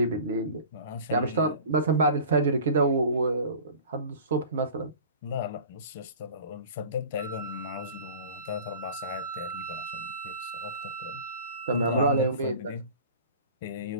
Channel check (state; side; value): inverted; both; correlation -0.41